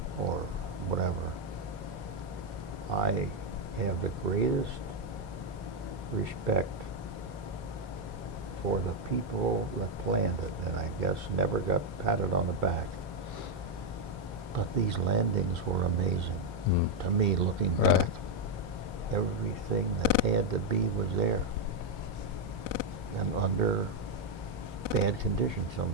or whatever. I have the greatest respect for the people that planned it, and I guess never got patted on the back. But these landings were amazing. To me, looking back. Everything that had to be was there. and under bad conditions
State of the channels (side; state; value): both; normal; correlation 0.02